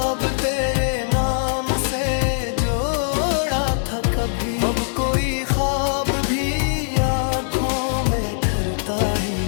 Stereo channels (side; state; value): right; silent; digital silence